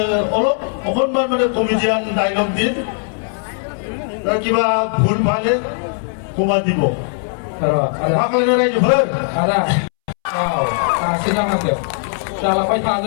অলপ অকণমান মানে কমেডিয়ান ডাইলগ দিম কিবা ভুল ভালে কমাই দিব माखासे रायजोफोर सिगाङाव जालांबाय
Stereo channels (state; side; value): silent; right; 67 dB below the other